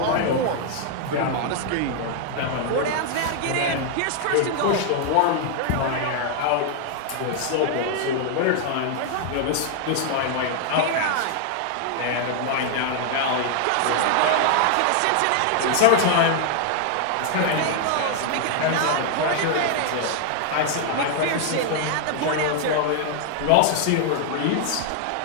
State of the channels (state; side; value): different; both; correlation 0.00